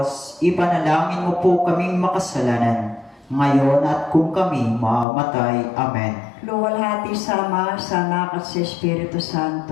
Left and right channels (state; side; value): drops out; right; at 5.1 s